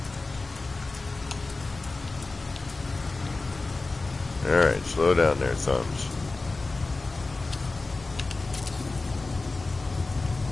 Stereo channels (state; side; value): quieter; right; 3.5 dB